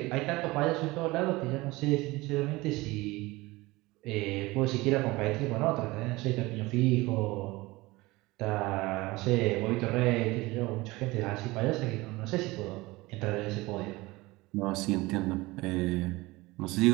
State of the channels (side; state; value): left; quieter; 21.2 dB